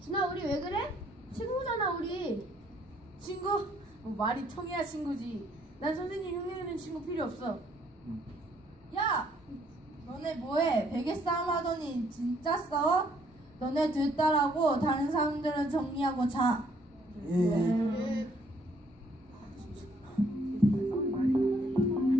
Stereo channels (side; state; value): both; normal; correlation 0.66